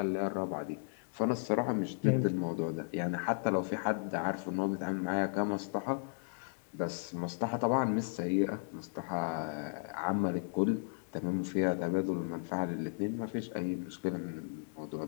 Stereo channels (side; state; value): right; silent; digital silence